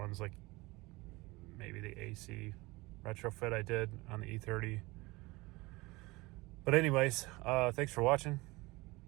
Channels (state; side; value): quieter; left; 22.6 dB